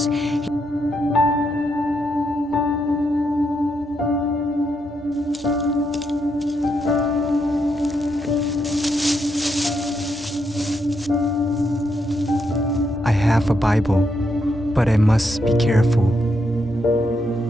I have a Bible, but I must be careful.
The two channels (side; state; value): both; normal; correlation 0.80